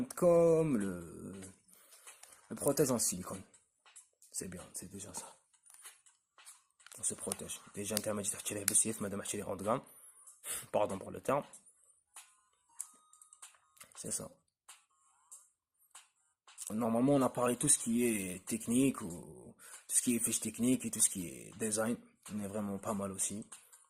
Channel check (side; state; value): both; identical; correlation 1.00